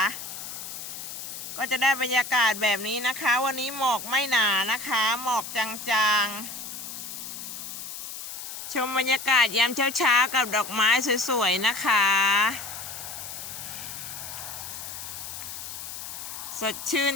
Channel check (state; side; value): noise; left; hiss, 9 dB below the sound